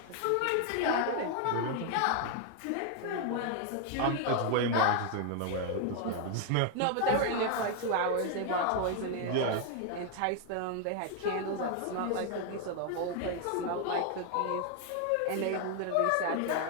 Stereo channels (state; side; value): different; both; correlation 0.00